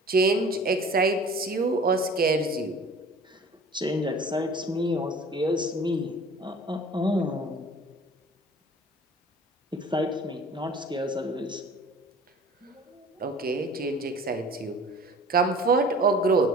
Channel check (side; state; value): both; normal; correlation 0.46